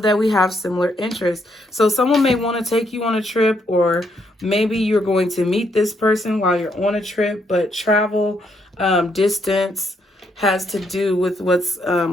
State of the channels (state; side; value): normal; both; correlation 0.75